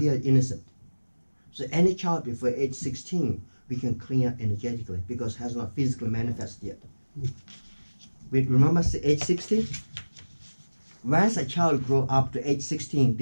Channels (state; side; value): inverted; both; correlation -1.00